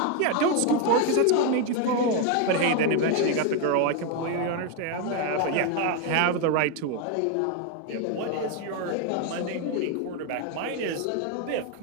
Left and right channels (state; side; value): different; both; correlation 0.01